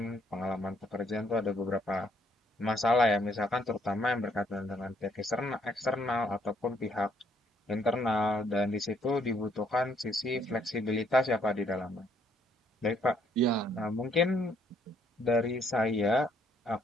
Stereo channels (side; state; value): both; normal; correlation 0.68